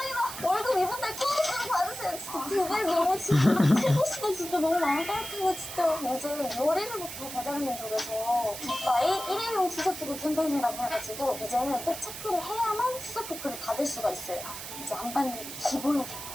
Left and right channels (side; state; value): right; noise; hiss, 9 dB below the sound